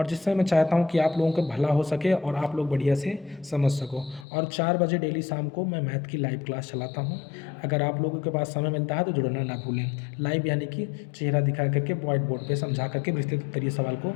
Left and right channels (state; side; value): drops out; right; at 4.2 s